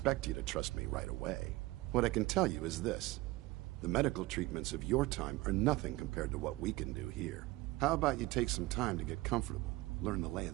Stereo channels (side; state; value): left; quieter; 20.0 dB